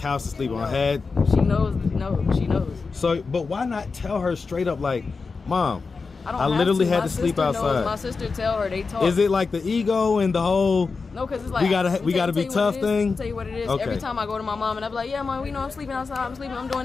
to sleep on. Had she knows? No, she knows. So, but why not tell her straight up, like, Mom, I don't literally have had to sleep outside. My sister tell her, they talk. Is it like the ego and the whole? No, because it's like we gotta be tough thing. I'll tell you what it is. Okay. Every time I go to my mom and I be like, yeah, Mom, you know I'm sleeping outside. I'm sleeping. I'm doing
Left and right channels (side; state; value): right; quieter; 4.5 dB